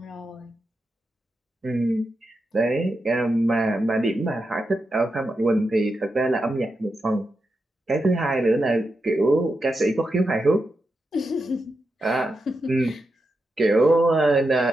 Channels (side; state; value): both; normal; correlation 0.87